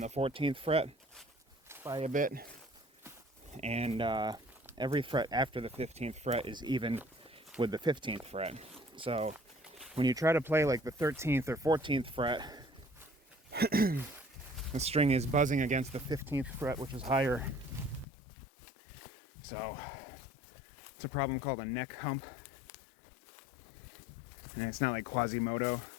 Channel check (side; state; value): right; drops out; at 18.1 s